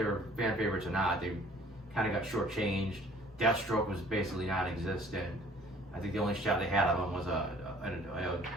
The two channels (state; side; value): normal; both; correlation 0.54